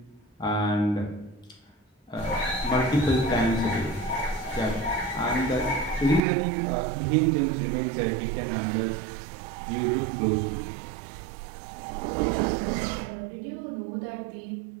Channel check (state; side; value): drops out; left; at 6.2 s